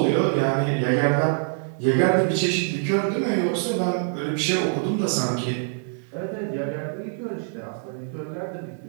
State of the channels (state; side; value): silent; left; digital silence